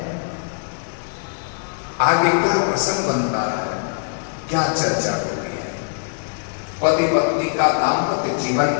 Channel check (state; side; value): silent; right; 65 dB below the other